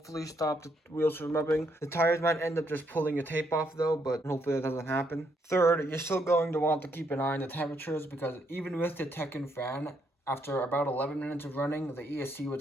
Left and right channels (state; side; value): normal; both; correlation 0.74